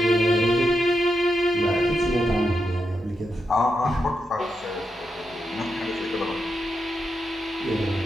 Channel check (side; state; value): both; normal; correlation 0.85